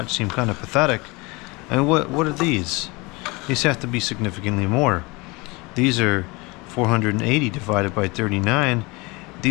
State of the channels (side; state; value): right; quieter; 25.2 dB